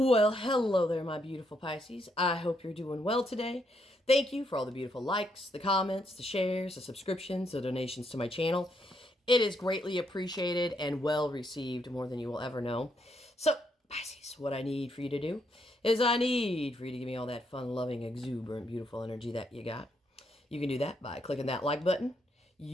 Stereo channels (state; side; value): normal; both; correlation 0.76